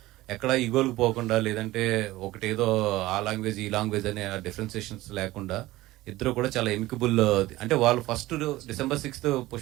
ఎక్కడ ఈగోలకు పోకుండా, లేదంటే ఒకటేదో ఆ లాంగ్వేజ్ ఈ లాంగ్వేజ్ అనే డిఫరెన్సియేషన్స్ లేకుండా ఇద్దరు కూడా చాలా ఎమికబుల్. అంటే వాళ్ళు first December 6th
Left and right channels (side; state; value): left; quieter; 17.7 dB